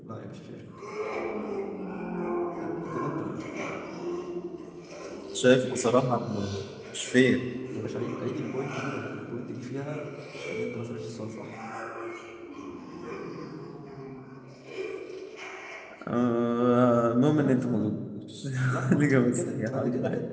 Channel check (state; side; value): identical; both; correlation 1.00